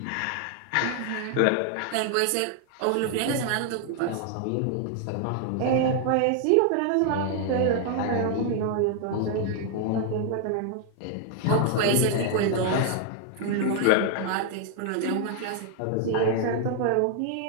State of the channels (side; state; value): both; different; correlation 0.00